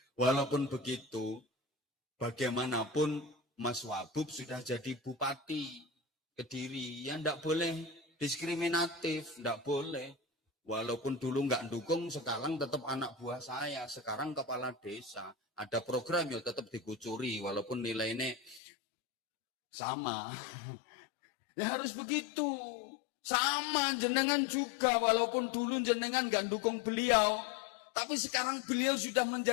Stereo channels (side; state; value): right; drops out; at 18.6 s